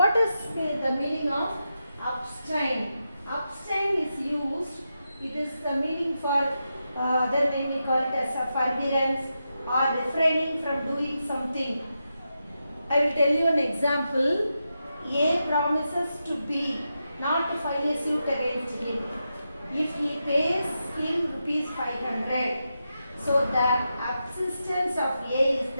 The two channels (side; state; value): both; inverted; correlation -0.87